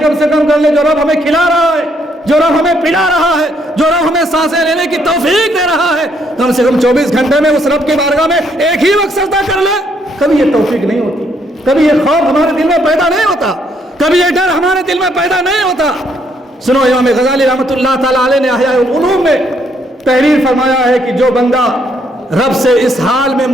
کم سے کم کر لے. جو رب ہمیں کھلا رہا ہے، جو رب ہمیں پلا رہا ہے، جو رب ہمیں سانسیں لینے کی توفیق دے رہا ہے، کم سے کم 24 گھنٹے میں اس رب کی بارگاہ میں ایک ہی وقت سجدہ کر لے. کبھی یہ توفیق نہیں ہوتی، کبھی یہ خوف ہمارے دل میں پیدا نہیں ہوتا، کبھی یہ ڈر ہمارے دل میں پیدا نہیں ہوتا. سنو امام غزالی رحمۃ اللہ تعالیٰ علیہ نے احیاء العلوم میں تحریر فرمایا ہے کہ جو بندہ رب سے اس حال میں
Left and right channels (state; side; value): normal; both; correlation 0.71